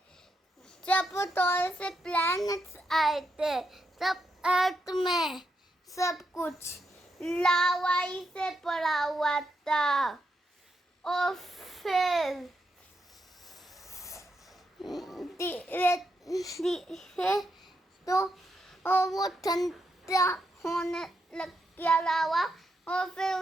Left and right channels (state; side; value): normal; both; correlation 0.82